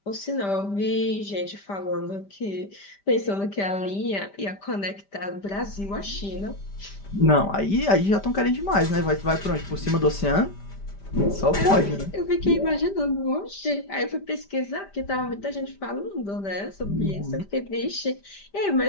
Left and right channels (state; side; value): late; right; 5.1 ms